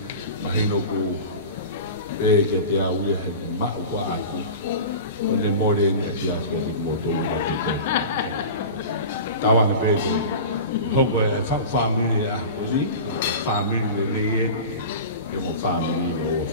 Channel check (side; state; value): both; inverted; correlation -0.33